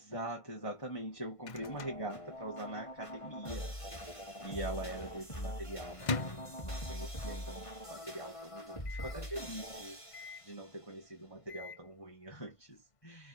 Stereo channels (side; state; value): right; late; 1.5 ms